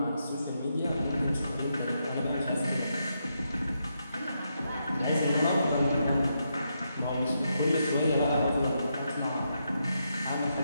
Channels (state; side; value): inverted; both; correlation -0.82